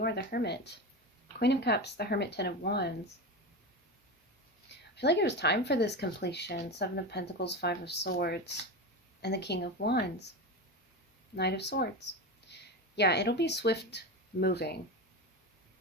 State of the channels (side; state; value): both; normal; correlation 0.21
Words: are, the Hermit. Queen of Cups, the Hermit, 10 of Wands. I feel like it was time for this completion. 7 of Pentacles, 5 of Swords, and the King of Wands. Knight of Swords. Yeah, it'll be swift moving.